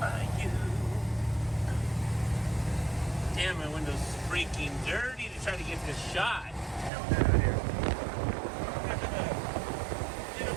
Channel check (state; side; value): drops out; left; at 6.9 s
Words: by you. Damn, my window's freaking dirty to try to get this shot. Down here. In a